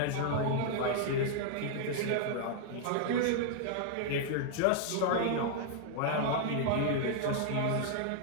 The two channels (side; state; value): both; different; correlation -0.01